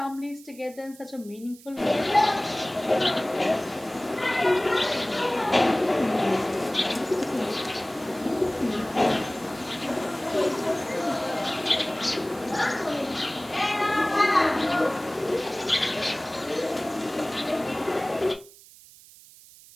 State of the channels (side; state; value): right; noise; hiss, 22 dB below the sound